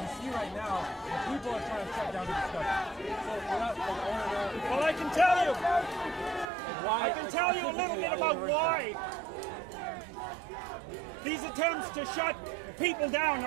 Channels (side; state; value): left; drops out; at 6.5 s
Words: see right now, people are trying to shut down the discussion. So Well, I can tell you a little bit about why these attempts to shut people down